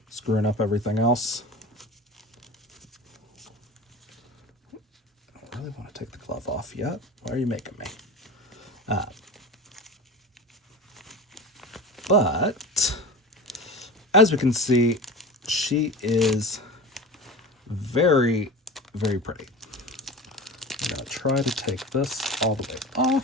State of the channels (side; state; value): both; normal; correlation 0.32